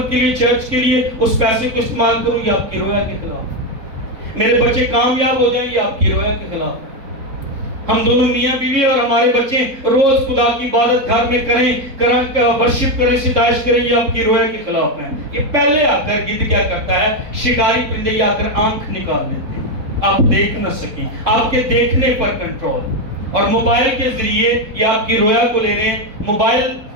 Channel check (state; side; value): late; left; 3.7 ms